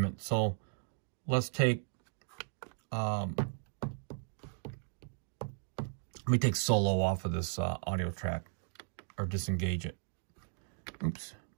So let's take, let me take solo off of this audio track, or disengage it. Oops.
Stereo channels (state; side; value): silent; left; digital silence